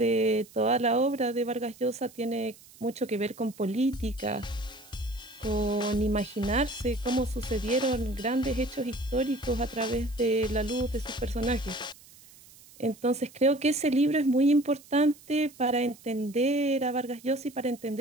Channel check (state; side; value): noise; right; hiss, 23 dB below the sound